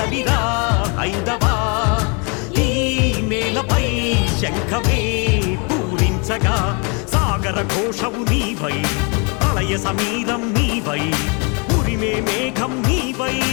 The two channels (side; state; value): right; quieter; 33.9 dB